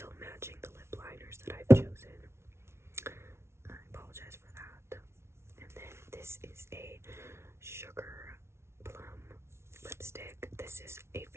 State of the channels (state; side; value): late; left; 0.13 ms